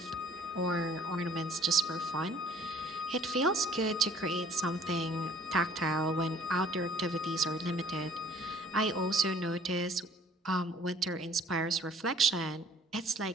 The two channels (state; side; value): normal; both; correlation 0.55